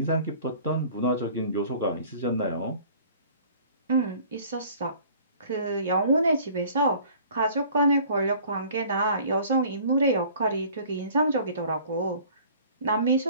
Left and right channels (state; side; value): inverted; both; correlation -0.50